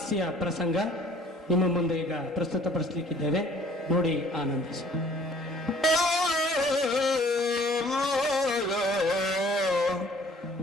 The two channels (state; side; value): normal; both; correlation 0.54